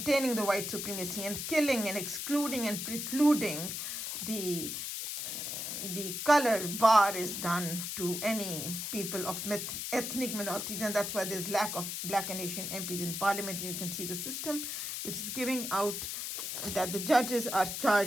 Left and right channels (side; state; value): left; noise; hiss, 4 dB below the sound